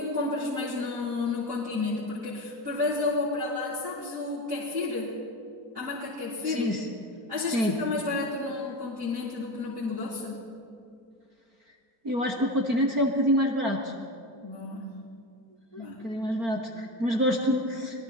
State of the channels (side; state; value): left; late; 4.4 ms